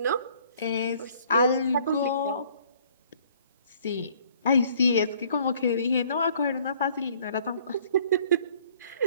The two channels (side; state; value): both; inverted; correlation -0.59